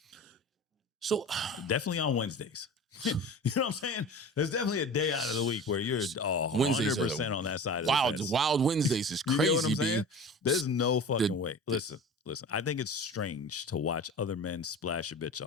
So definitely on Wednesdays. You know what I'm saying? There's definitely a day out of the week where you're 100% on that side of the fence. Wild Wednesdays is crazy. You know what I'm saying? B. There's no fucking way. Listen. I think it's strange to watch other men splash a bitch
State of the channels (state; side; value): normal; both; correlation 0.35